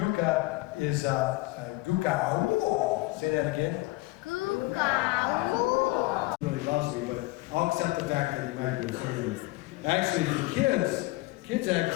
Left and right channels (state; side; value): quieter; right; 20.7 dB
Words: is Guka. Ooh. Say that again. Guka. Really loves me, but I'll accept the fact that you might be afraid of me. Actually, for